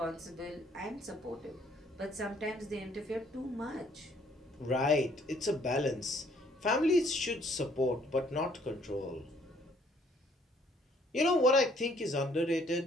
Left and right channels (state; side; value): normal; both; correlation 0.63